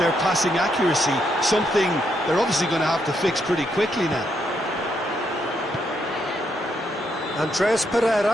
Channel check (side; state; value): both; normal; correlation 0.77